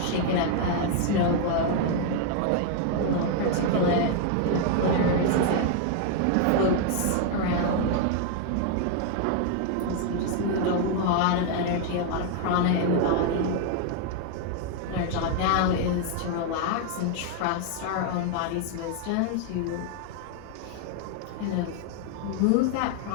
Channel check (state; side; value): different; both; correlation 0.00